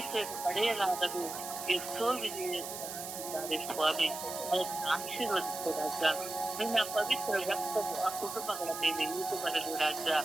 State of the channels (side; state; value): right; noise; hiss, 8 dB below the sound